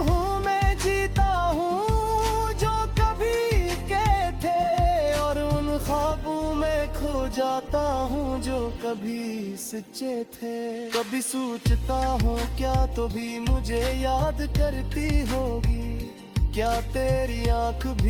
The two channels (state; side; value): identical; both; correlation 1.00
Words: में जीता हूँ जो कभी के थे, और उन ख्वाबों में खो जाता हूँ जो कभी सच्चे थे। कभी सोचता हूँ क्या तो भी मुझे याद करती होगी, क्या तेरी आँख